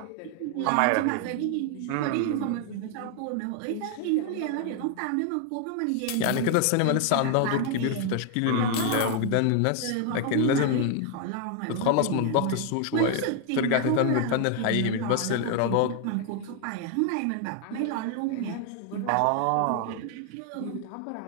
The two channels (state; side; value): different; both; correlation 0.00